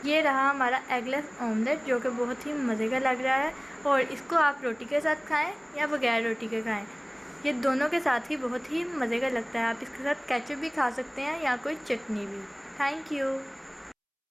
ये रहा हमारा एगलेस ऑमलेट जो कि बहुत ही मज़े का लग रहा है और इसको आप रोटी के साथ खाएं या बगैर रोटी के खाएं। ये दोनों के साथ ही बहुत ही मज़े का लगता है। आप इसके साथ केचप भी खा सकते हैं या कोई चटनी भी। Thank you.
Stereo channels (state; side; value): identical; both; correlation 1.00